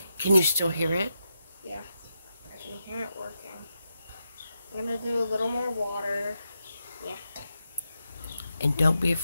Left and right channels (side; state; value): both; inverted; correlation -0.86